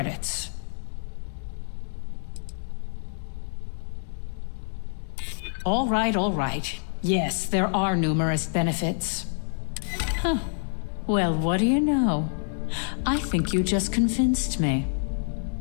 All right. Yes, there are numerous benefits. Huh. Well, what do you know? I think you just convinced me.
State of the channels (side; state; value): right; silent; digital silence